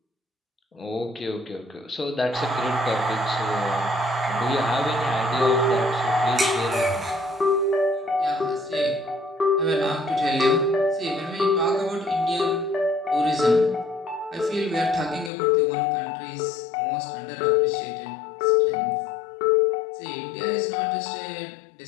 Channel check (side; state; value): right; drops out; at 15.3 s